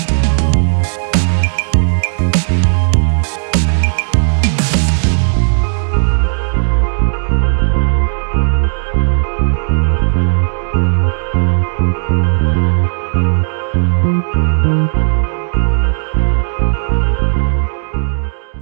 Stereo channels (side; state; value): left; silent; digital silence